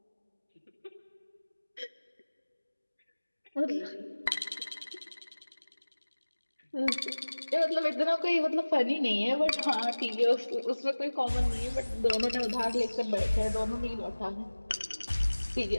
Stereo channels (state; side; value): inverted; both; correlation -1.00